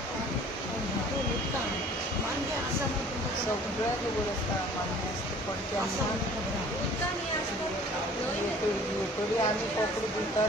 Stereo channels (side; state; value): both; normal; correlation 0.50